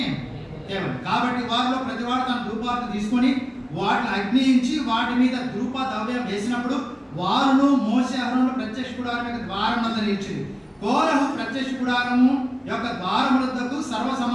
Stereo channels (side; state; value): both; identical; correlation 1.00